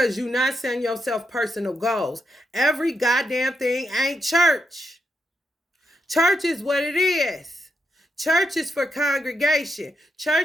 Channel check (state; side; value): normal; both; correlation 0.82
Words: you're not setting yourself personal goals. Every goddamn thing ain't church. Church is what it is. Church is for congregation.